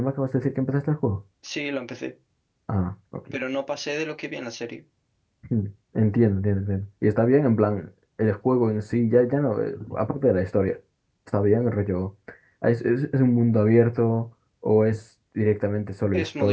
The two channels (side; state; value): both; identical; correlation 1.00